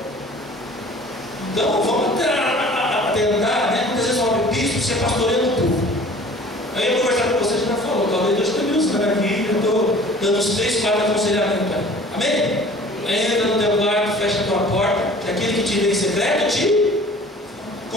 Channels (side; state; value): both; normal; correlation 0.47